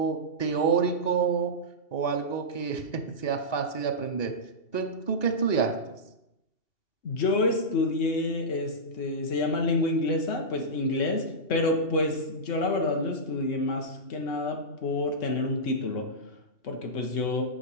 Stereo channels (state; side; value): late; right; 2.8 ms